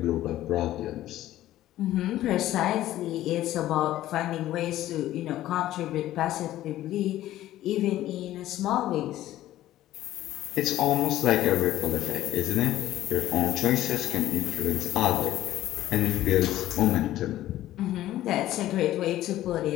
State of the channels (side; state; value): right; quieter; 14.2 dB